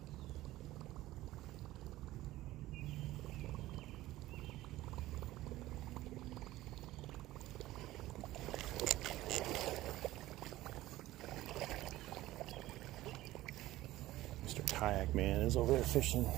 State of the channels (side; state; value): left; quieter; 16.3 dB